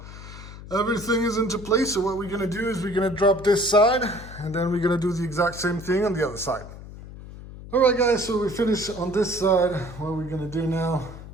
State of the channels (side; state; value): left; noise; hum, 14 dB below the sound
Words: Everything is into place, so what we're gonna do is we're gonna drop this side, and then we're gonna do the exact same thing on the other side. All right, guys, so we finished on this side. What we're gonna do now,